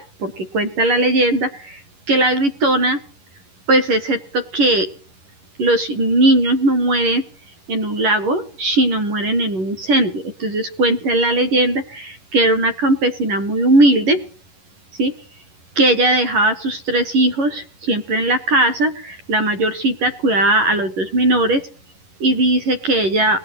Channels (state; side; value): late; left; 11 ms